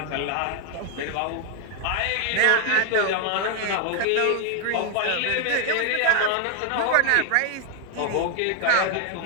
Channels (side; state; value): both; different; correlation 0.00